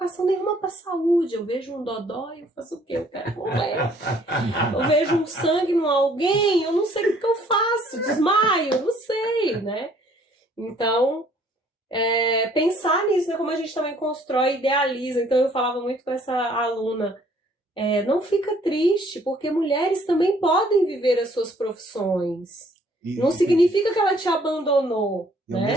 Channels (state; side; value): normal; both; correlation 0.61